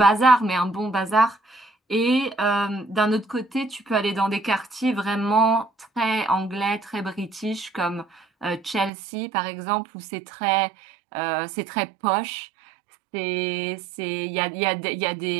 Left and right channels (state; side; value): drops out; left; at 8.9 s